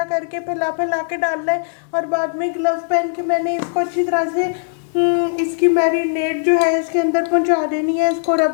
करके फैला के डालना है। और बाद में ग्लव्स पहन के मैंने इसको अच्छी तरह से इसकी मैरिनेट जो है इसके अंदर पहुंचा देनी है, इसको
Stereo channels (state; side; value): silent; right; 63 dB below the other